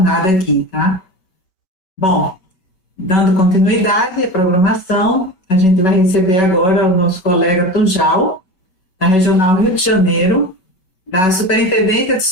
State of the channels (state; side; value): late; right; 5.3 ms